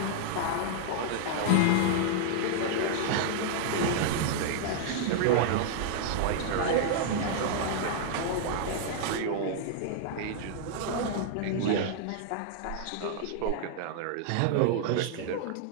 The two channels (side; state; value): both; different; correlation 0.00